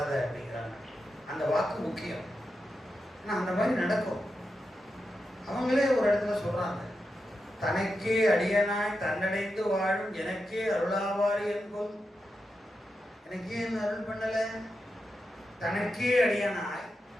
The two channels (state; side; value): normal; both; correlation 0.88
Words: அப்படிங்கிறாங்க. அந்த வாக்கு முக்கியம். ஆனால் அந்த மாதிரி நடக்கும். அவங்களே ஒரு இடத்துல சொல்றாங்க, தனக்கே அடியனாய் தன்னடைந்து வாழும் எனக்கே அருளாவாறு என்போல். எனக்கே என்ன அருள் பண்ணல? தனக்கே அடியனாய்